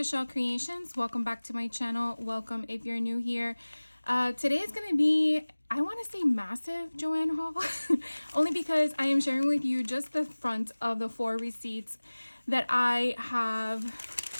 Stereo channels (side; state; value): both; inverted; correlation -1.00